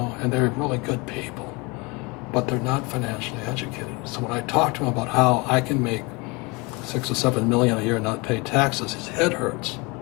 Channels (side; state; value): right; quieter; 27.2 dB